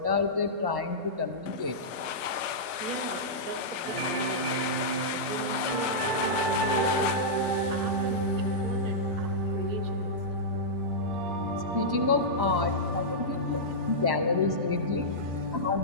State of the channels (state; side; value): late; left; 1.1 ms